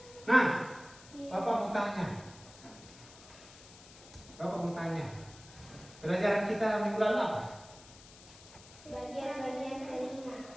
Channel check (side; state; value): left; noise; hiss, 20 dB below the sound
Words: Nah, Bapak mau tanya. Pelajaran kita minggu lalu apa? Bagian-bagian telinga.